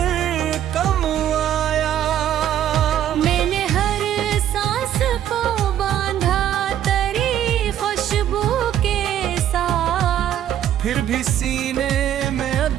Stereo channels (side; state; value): left; quieter; 10.9 dB